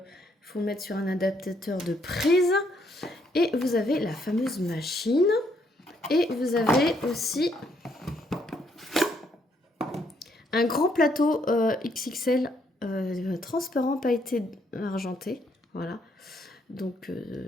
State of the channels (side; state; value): both; normal; correlation 0.72